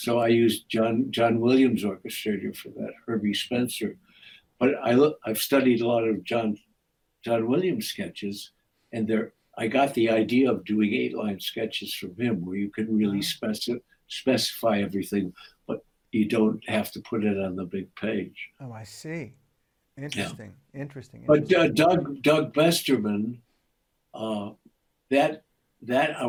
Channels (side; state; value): both; identical; correlation 1.00